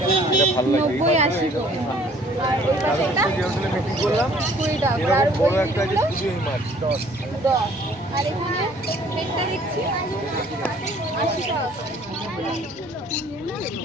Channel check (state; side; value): normal; both; correlation 0.57